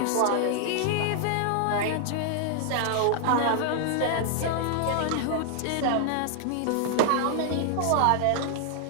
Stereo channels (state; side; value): different; both; correlation 0.00